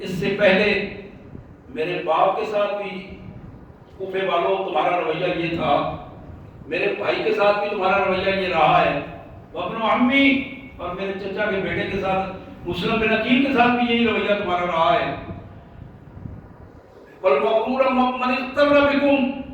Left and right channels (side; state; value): both; identical; correlation 1.00